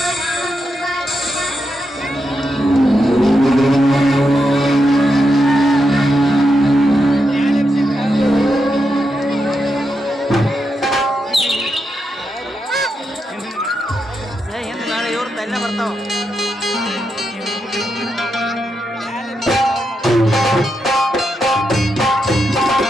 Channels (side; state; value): both; normal; correlation 0.85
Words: ನಾಳೆ ಇವ್ರು ತಲೆ ಬರ್ತಾವ.